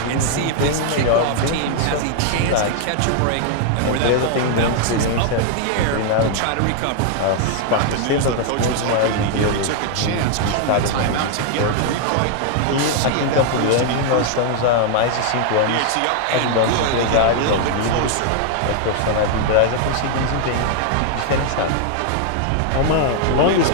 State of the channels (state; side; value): different; both; correlation 0.00